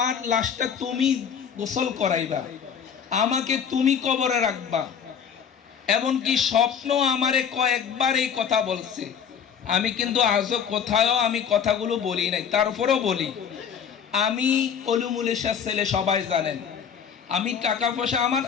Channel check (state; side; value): quieter; right; 7.5 dB